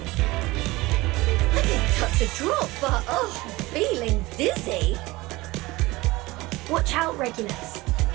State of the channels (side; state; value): left; quieter; 20.6 dB